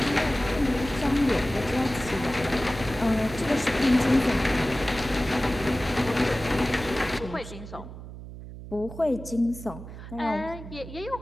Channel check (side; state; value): right; noise; hum, 13 dB below the sound